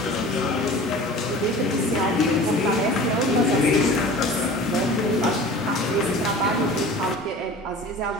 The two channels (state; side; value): normal; both; correlation 0.40